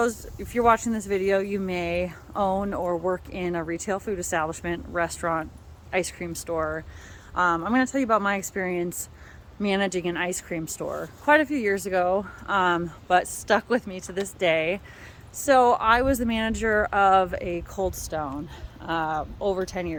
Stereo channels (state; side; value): identical; both; correlation 1.00